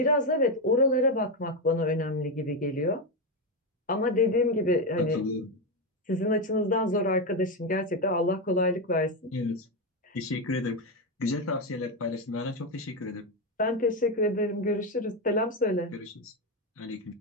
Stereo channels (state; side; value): normal; both; correlation 0.09